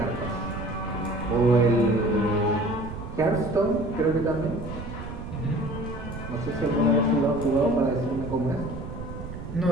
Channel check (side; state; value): right; noise; rumble, 10 dB below the sound